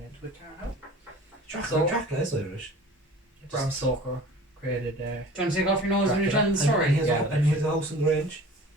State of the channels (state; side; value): normal; both; correlation 0.43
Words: into it now. Dracula is Irish. Bram Stoker created. Do you want to take off your nose when you're telling the And story? he has a house in Grange.